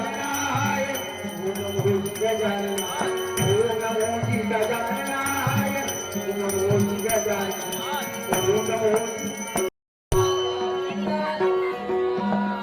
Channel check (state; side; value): identical; both; correlation 1.00